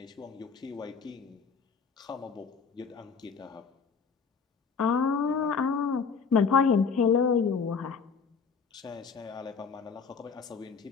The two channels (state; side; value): quieter; right; 5.6 dB